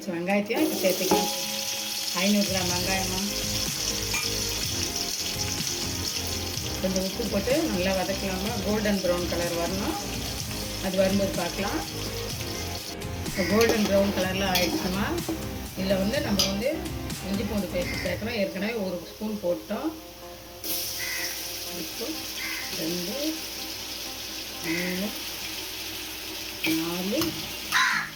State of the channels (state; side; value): identical; both; correlation 1.00